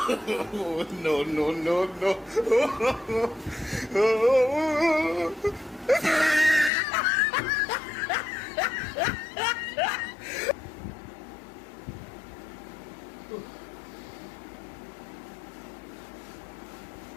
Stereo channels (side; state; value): right; drops out; at 6.7 s